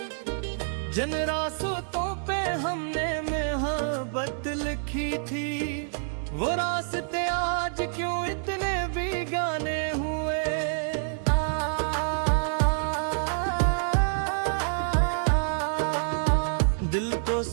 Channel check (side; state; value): left; silent; digital silence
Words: जिन रास्तों पे हमने मोहब्बत लिखी थी, वो रास्ते आज क्यों इतने बेगाने